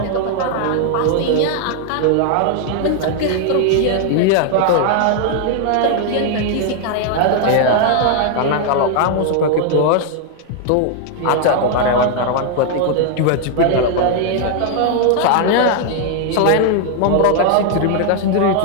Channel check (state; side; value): different; both; correlation 0.00